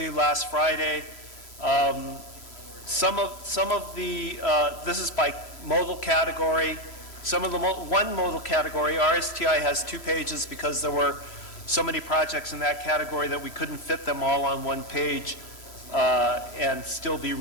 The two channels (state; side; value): late; right; 3.0 ms